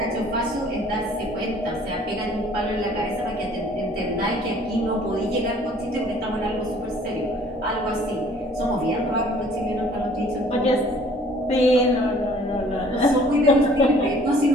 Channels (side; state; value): both; normal; correlation 0.55